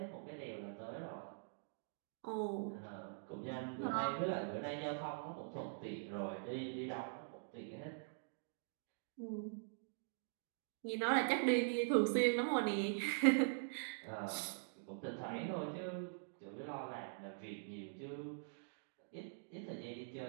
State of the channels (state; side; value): silent; left; digital silence